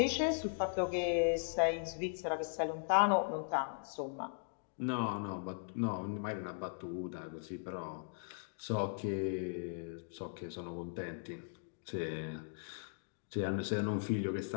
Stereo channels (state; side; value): silent; right; digital silence